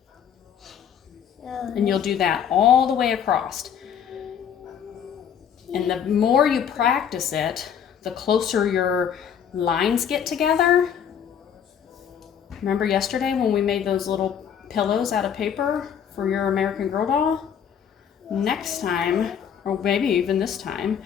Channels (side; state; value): right; quieter; 8.3 dB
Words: And you'll do that all the way across. And the more you practice it, the closer your lines get together. Remember yesterday when we made those little pillows out of paper for your American Girl doll? Next time, or maybe even this time,